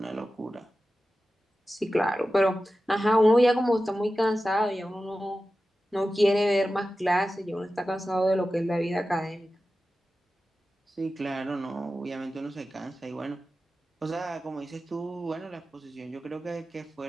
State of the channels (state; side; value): normal; both; correlation 0.94